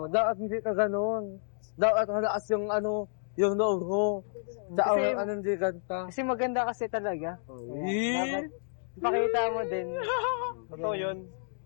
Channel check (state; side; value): silent; right; digital silence